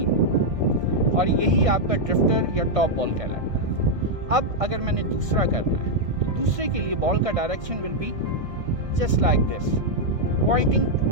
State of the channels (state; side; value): late; left; 1.6 ms